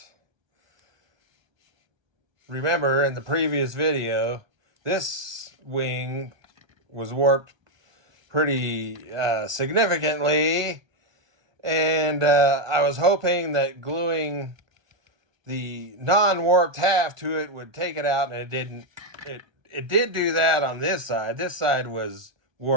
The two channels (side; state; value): left; late; 1.2 ms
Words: Remember in the previous video, this wing was warped pretty significantly. And I was hoping that gluing the non-warped half to it would take it out, and it didn't. It did do that on this side. This side was